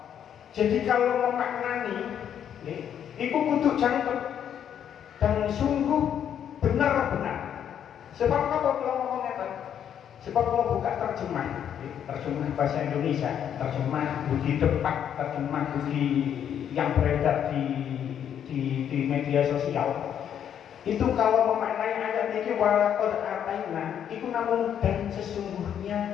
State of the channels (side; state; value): right; quieter; 9.2 dB